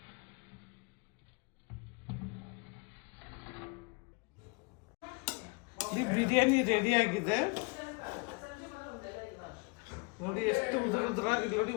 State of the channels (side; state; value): right; quieter; 30.3 dB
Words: ಈ ಬಿರಿಯಾನಿ ರೆಡಿಯಾಗಿದೆ ನೋಡಿ. ಎಷ್ಟು ಉದುರಾಗಿ ನೋಡಿ.